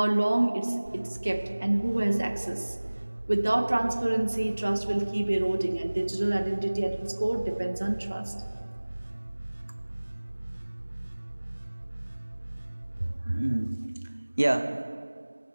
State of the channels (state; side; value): inverted; both; correlation -1.00